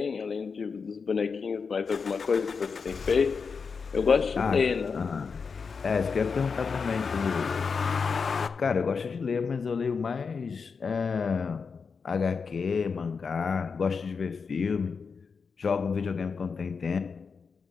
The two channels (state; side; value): quieter; right; 5.4 dB